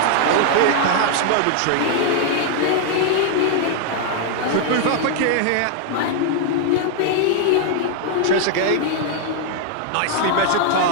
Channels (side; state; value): both; different; correlation 0.00